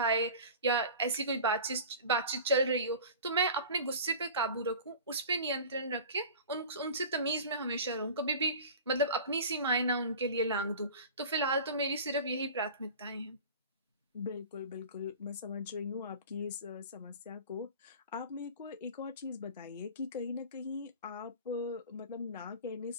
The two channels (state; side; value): inverted; both; correlation -0.38